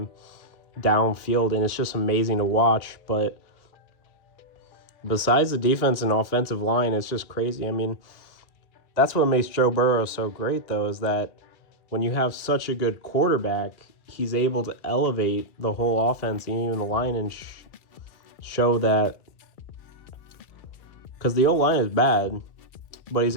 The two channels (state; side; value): late; right; 2.4 ms